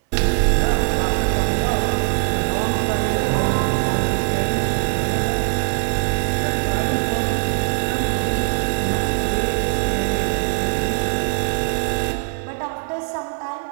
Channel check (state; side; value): silent; left; 61 dB below the other